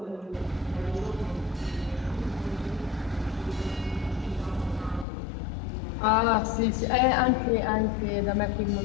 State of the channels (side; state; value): right; drops out; at 5.1 s